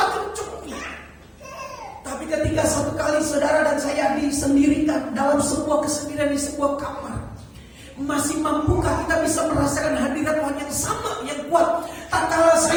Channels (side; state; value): both; identical; correlation 1.00